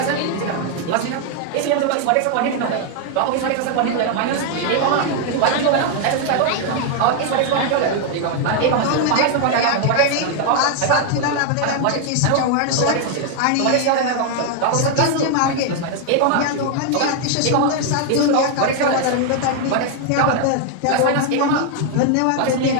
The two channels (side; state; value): both; different; correlation 0.00